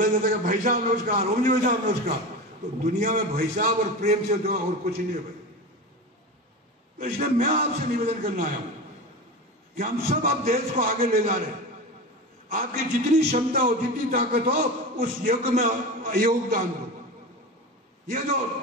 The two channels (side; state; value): both; normal; correlation 0.26